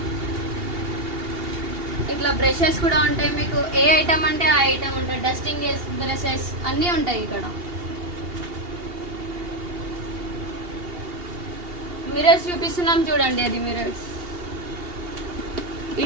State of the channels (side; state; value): left; late; 2.8 ms